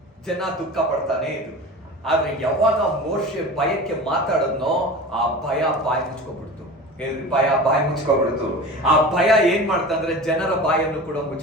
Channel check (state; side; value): normal; both; correlation 0.34